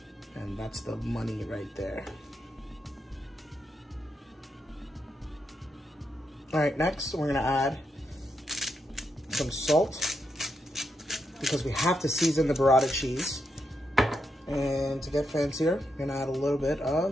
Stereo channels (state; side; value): normal; both; correlation 0.83